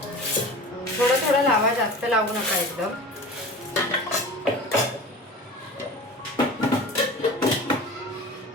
थोडं थोडं लावा, जास्त लावू नका एकदम.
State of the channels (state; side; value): normal; both; correlation 0.36